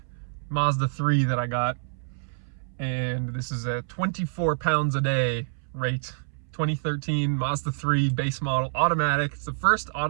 Mazda 3 that I got. And this is a 24 pounds a day rate. 2013 Mazda 3 base model automatic. It's the first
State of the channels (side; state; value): left; silent; 60 dB below the other